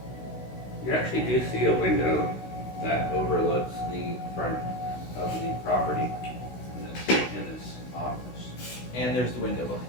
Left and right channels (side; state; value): right; late; 16 ms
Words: You actually do see a window that overlooks the front of the property in this office. And there's the window